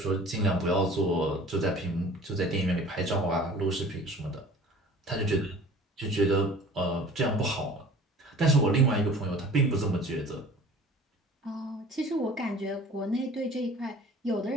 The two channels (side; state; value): both; normal; correlation 0.46